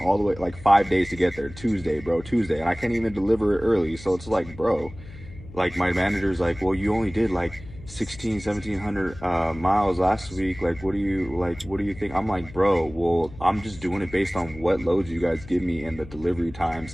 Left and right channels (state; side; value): noise; left; hum, 17 dB below the sound